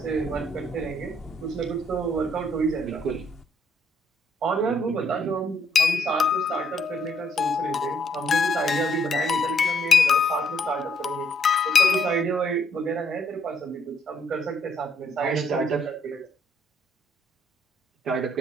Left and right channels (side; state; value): both; normal; correlation 0.69